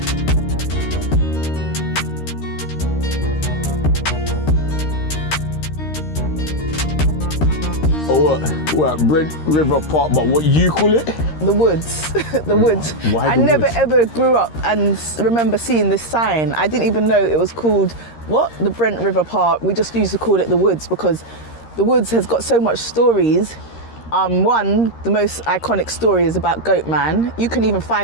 What, Brent River Park, but what you call it? The woods, the woods. Why I the never woods? ever grew up and remember seeing this sign. I didn't even know it was called, what? The Brent River Park. We just used to call it the woods because the woods has got so much stories. One, the most iconic story is about Goatman. You can even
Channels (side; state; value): right; late; 13 ms